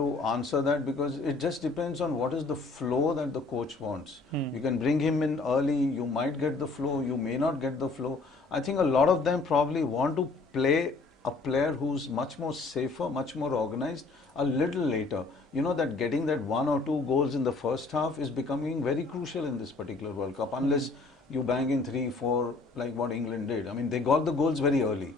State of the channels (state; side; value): quieter; right; 3.7 dB